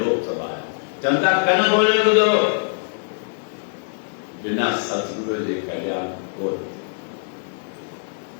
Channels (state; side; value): silent; right; digital silence